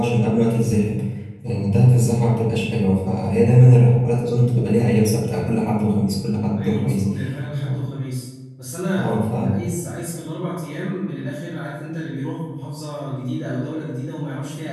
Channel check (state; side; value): identical; both; correlation 1.00